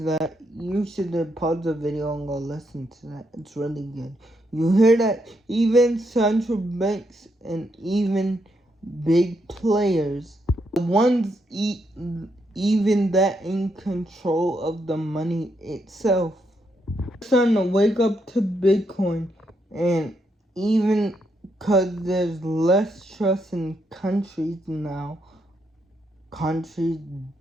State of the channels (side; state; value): both; normal; correlation 0.78